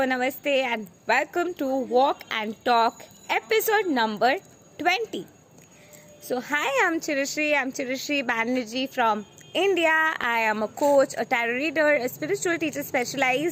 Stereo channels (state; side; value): identical; both; correlation 1.00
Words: Namaste, and welcome to Walk and Talk episode number 20. So, hi, I'm Chirashri Banerjee from India. I am a coach, a tarot reader, a spiritual teacher